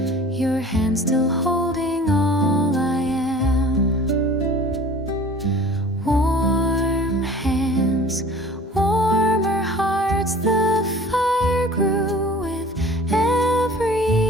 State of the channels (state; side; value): normal; both; correlation 0.45